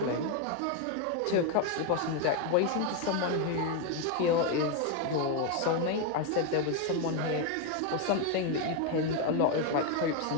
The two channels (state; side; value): different; both; correlation 0.02